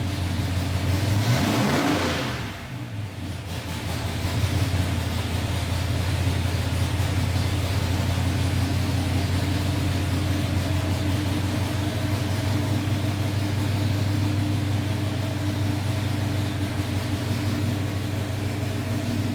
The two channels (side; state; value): both; identical; correlation 1.00